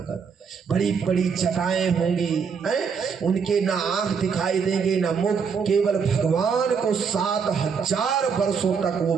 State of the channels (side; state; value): left; quieter; 6.1 dB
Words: बड़ी बड़ी जटाएं होंगी, उनके ना आंख दिखाई देंगे ना मुख। केवल भगवान को 7,000 वर्षों तक वो